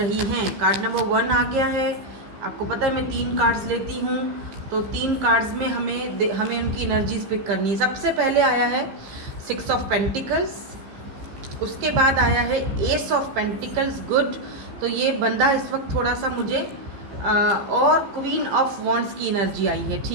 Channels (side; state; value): left; late; 15 ms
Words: हैं। कार्ड नंबर 1 आ गया है। आपको पता है मैं 3 कार्ड्स लेती हूँ, तो 3 कार्ड्स में हमें उनकी एनर्जीज पिक करनी है। सबसे पहले आया है 6 ऑफ पेंटिकल्स, उसके बाद आया है एस ऑफ पेंटिकल्स, गुड। तो ये बंदा इस वक्त थोड़ा सा मुझे और क्वीन ऑफ वॉन्ड्स की एनर्जी आई है,